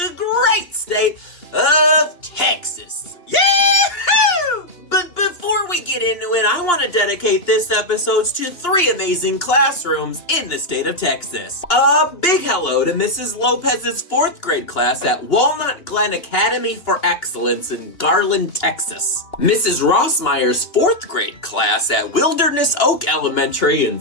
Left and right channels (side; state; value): right; late; 2.8 ms